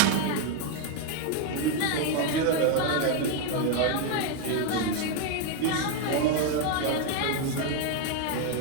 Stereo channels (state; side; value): different; both; correlation 0.01